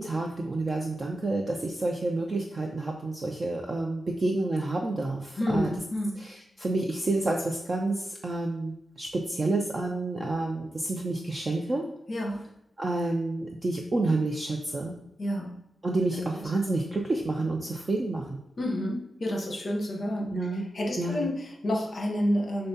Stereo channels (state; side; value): normal; both; correlation 0.90